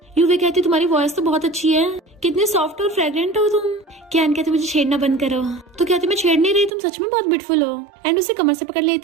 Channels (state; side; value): drops out; left; at 6.7 s